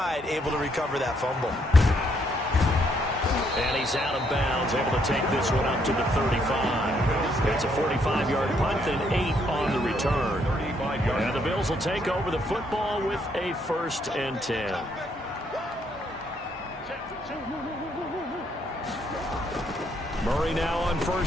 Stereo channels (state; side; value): normal; both; correlation 0.72